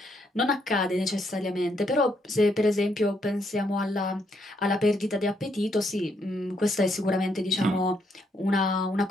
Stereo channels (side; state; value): both; normal; correlation 0.75